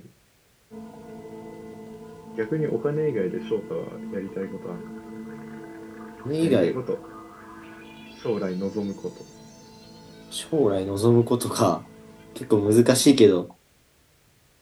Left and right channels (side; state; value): both; identical; correlation 1.00